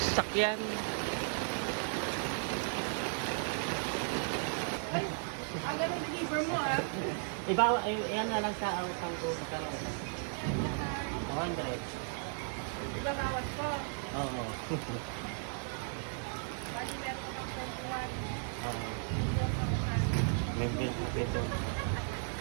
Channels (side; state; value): left; silent; 54 dB below the other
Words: sasakyan. Ay, ang ganun deliver mo ah. Iba, yan na lang sa utang ko. Magkano? 100. Diba bawas ko? Oo. Bali meron ko ng 21. Oo. May bill ko dito.